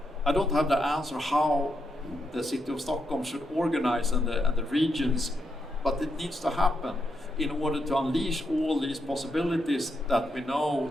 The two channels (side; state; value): both; normal; correlation 0.82